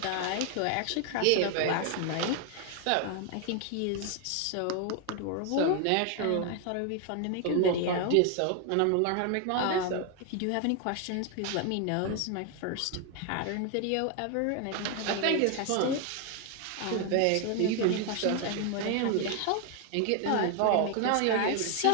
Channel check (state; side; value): different; both; correlation 0.01